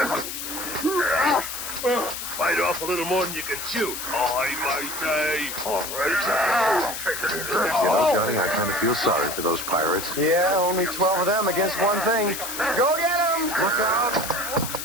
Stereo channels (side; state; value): left; noise; hiss, 6 dB below the sound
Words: Bite off a little more than you can chew. I might die. All right. You know, Johnny, I kind of feel sorry for those pirates. Yeah, only 12 of them against one thing. Go get them! Look out!